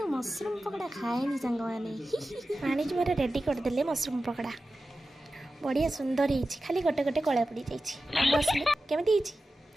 मशरूम पकड़ा खाएनी सांग मैंने भाणीजी मोर रेडी करदे मशरूम पकड़ा बढ़िया सुंदर है खाली गोटे गोटे कला पड़ जाइए केमी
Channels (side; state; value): both; normal; correlation 0.94